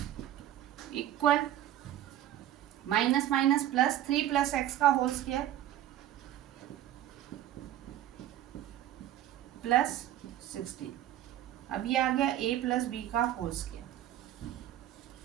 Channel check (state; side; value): quieter; left; 12.5 dB